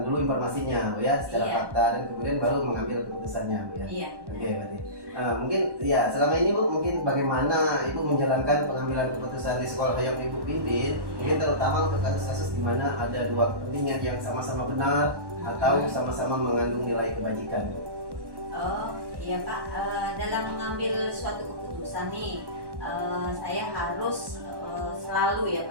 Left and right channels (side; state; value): left; late; 1.1 ms